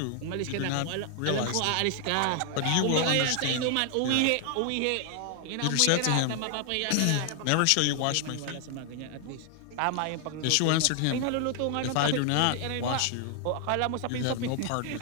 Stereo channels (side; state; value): both; different; correlation 0.00